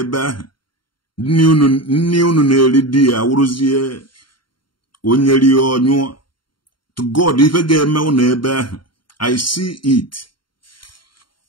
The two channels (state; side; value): late; right; 0.72 ms